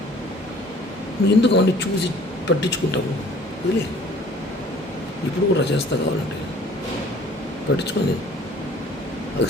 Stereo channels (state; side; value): normal; both; correlation 0.52